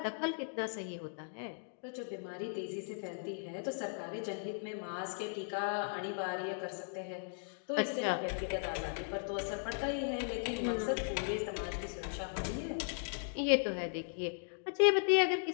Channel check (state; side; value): silent; right; digital silence